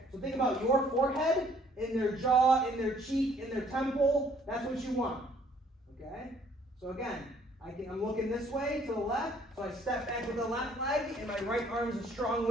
So think about your forehead in their jaw, in their cheek, in their temple. That's what you want. Okay? So again, I'm looking this way to the left, so I step back with the left leg, and my right arm is a strong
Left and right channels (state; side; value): normal; both; correlation 0.61